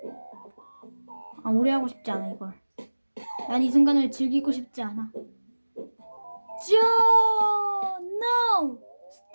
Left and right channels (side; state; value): both; inverted; correlation -1.00